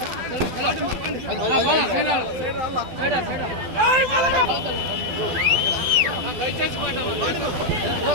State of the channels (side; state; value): left; late; 12 ms